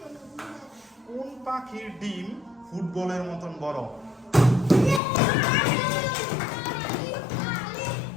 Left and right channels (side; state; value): right; drops out; at 5.0 s